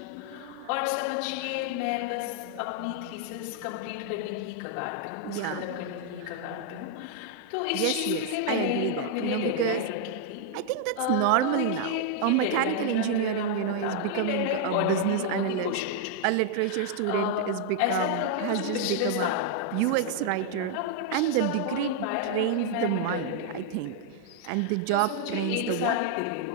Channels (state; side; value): different; both; correlation 0.00